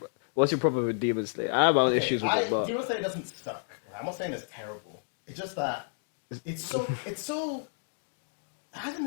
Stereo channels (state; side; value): silent; right; digital silence